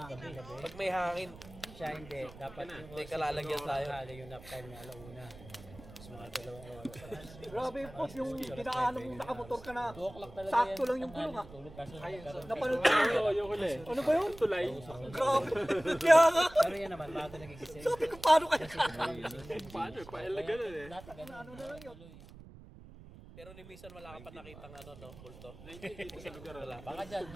Pag may hangin, Siya hindi. Dapat yung may kalalagyan tayo. yung nap time na alauna. Mas mga dalawang oras. Grabe po, yung dinaanan mong nakamotor ka na. Sakto lang yung gulong ha. Napanood ko yun. Yung huli. Ano ba yun? Tulay. Grabe. Kaya nga. Pero yan naman, bago nagigising. Sabi ko, paano kaya? Paano? Paelaga na eh. Ano na lang yun? pero ni minsan wala ka pa nakitang ano, no, multo. Dito sa lugar. Wala. Baka dyan.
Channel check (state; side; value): noise; right; rumble, 18 dB below the sound